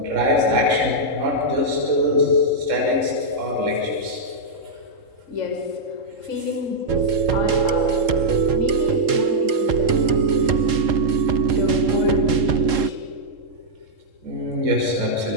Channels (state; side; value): late; left; 3.7 ms